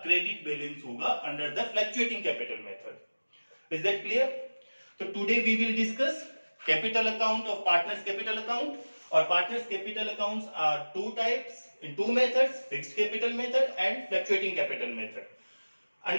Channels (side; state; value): both; inverted; correlation -1.00